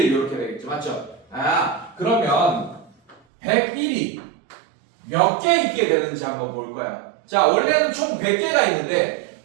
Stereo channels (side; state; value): left; drops out; at 3.2 s